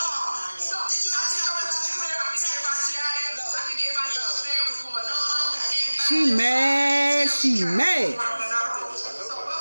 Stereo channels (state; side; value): inverted; both; correlation -1.00